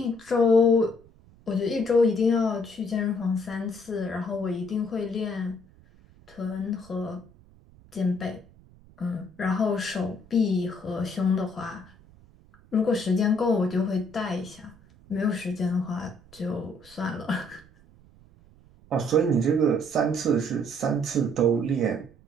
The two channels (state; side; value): noise; right; rumble, 26 dB below the sound